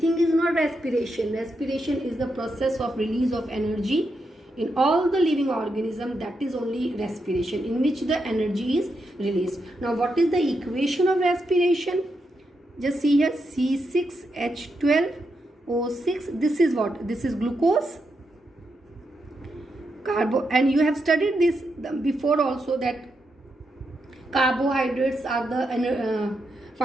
is not respiration. Respiration is the process of release of energy in all the living organism. That is only respiration, in which the energy is released. Now what is the equation of respiration? Just see here, C6H12O6. This is what? This is glucose, and you have studied this before also, that carbohydrates are the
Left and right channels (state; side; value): normal; both; correlation 0.84